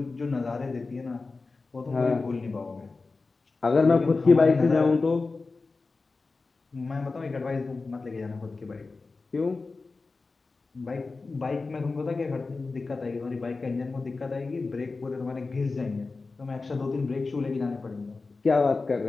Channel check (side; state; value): right; quieter; 3.9 dB